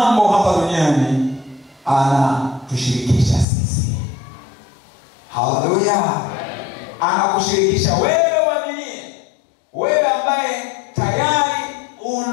hapa duniani. Anatushirikisha sisi. Haleluya. Anakushirikisha wewe uaminie, wewe ambaye tayari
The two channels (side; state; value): right; drops out; at 3.5 s